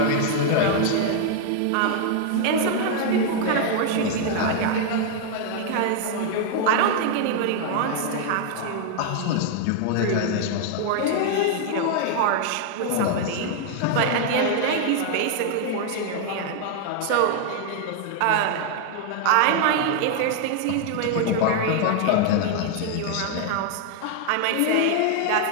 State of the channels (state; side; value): different; both; correlation 0.00